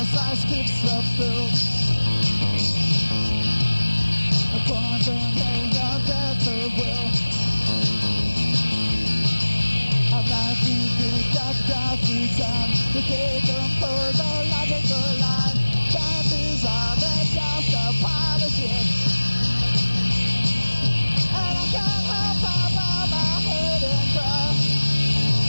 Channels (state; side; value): inverted; both; correlation -1.00